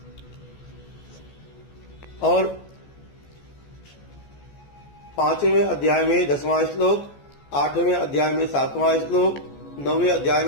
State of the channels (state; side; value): late; right; 14 ms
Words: और 5वें अध्याय में 10वां श्लोक, 8वें अध्याय में 7वां श्लोक, 9वें अध्याय